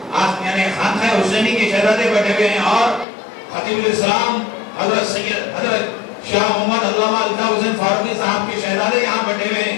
یعنی خانقاہ حسینی کے شہزادے بیٹھے ہوئے ہیں، اور خطیب الاسلام حضرت سید حضرت شاہ محمد علامہ الطاف حسین فاروقی صاحب کے شہزادے یہاں بیٹھے ہوئے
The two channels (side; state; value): right; drops out; at 3.1 s